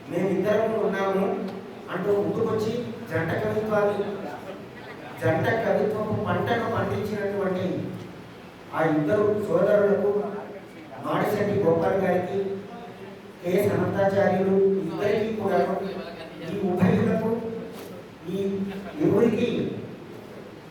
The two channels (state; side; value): identical; both; correlation 1.00